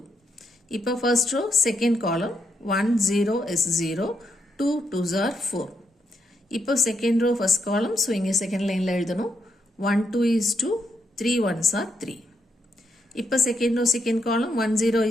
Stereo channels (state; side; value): normal; both; correlation 0.80